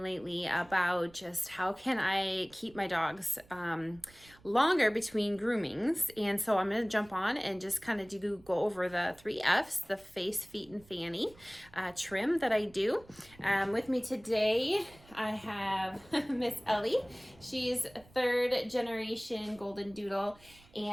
about just how can I keep my dogs longer between groomings. And so I'm going to jump on and just kind of go over the 3 F's, the face, feet, and fanny trim that I do. With me today, I have Miss Ellie. She's a 3rd generation Goldendoodle,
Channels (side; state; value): right; noise; rumble, 26 dB below the sound